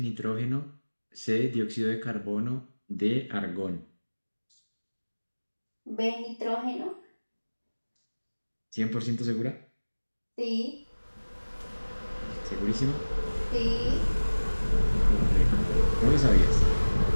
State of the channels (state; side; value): inverted; both; correlation -1.00